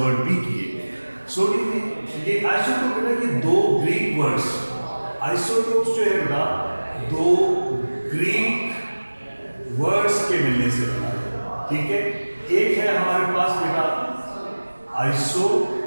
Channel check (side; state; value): both; inverted; correlation -1.00